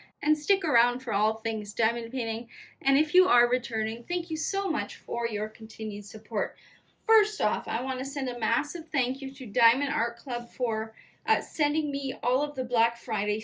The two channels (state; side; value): identical; both; correlation 1.00